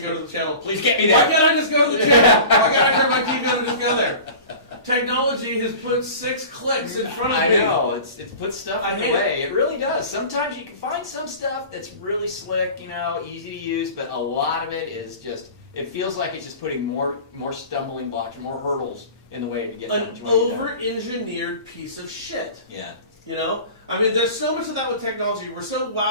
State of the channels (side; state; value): both; inverted; correlation -0.38